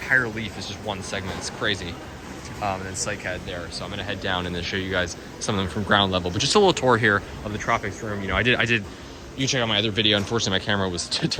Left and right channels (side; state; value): both; identical; correlation 1.00